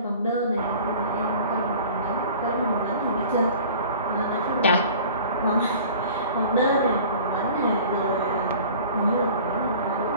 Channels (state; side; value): inverted; both; correlation -0.44